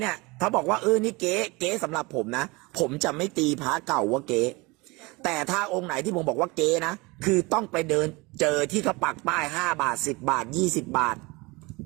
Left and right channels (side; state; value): left; quieter; 24.9 dB